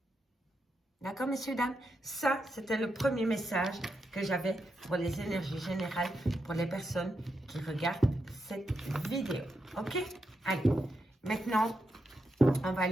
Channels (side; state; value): both; normal; correlation 0.85